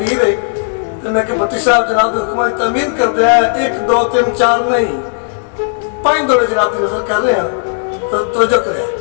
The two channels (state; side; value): silent; right; digital silence